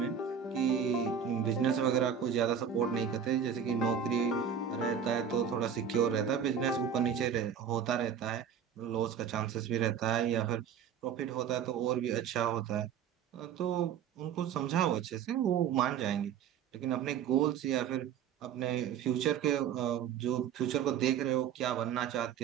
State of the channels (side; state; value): left; quieter; 8.0 dB